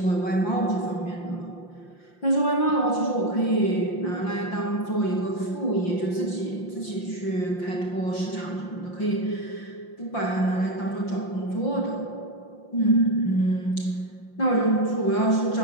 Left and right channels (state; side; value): late; right; 5.7 ms